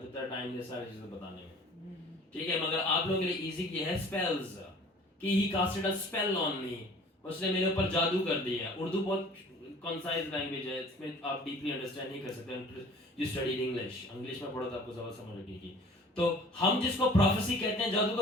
तक टाइम नहीं सारी चीजें बताने में, ठीक है। मगर आप लोगों के लिए इजी किया है स्पेल्स, कि he casted a spell on me, उसने मेरे ऊपर जादू कर दिया। उर्दू बहुत कंसाइज लैंग्वेज है, इसमें आप डीपली अंडरस्टैंड नहीं कर सकते। यू स्टडी इंग्लिश में पढ़ो तो आपको ज्यादा समझ लगेगी। तो हम जिसको प्रोफेसी कहते हैं,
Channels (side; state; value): both; normal; correlation 0.49